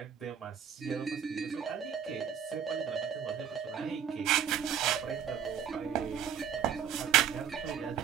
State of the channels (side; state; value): left; quieter; 8.4 dB